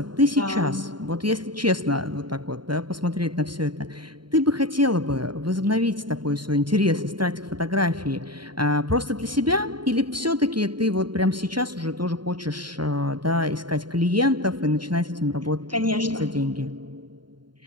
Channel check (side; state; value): left; late; 0.72 ms